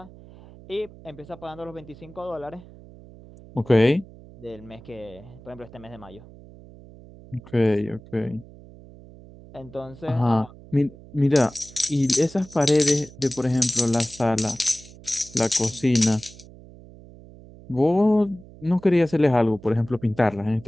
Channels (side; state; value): right; noise; hum, 20 dB below the sound